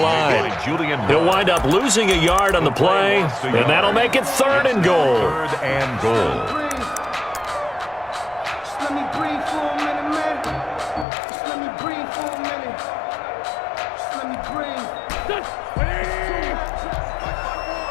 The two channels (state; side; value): drops out; right; at 11.1 s